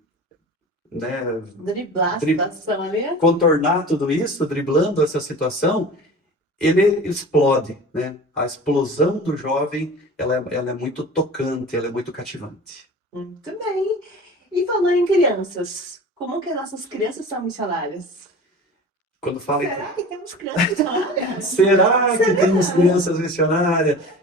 né, Driblar a situação ali. contornar tudo isso, driblando essa situação, ele explode, né? A explosão do jovem, ela é muito tocante, ela é muito cativante. Muito bem. E falando em crianças, como que as nossas crianças são missionárias? Quando fala Será que temos crianças missionárias? será que temos crianças missionárias?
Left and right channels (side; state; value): both; normal; correlation 0.38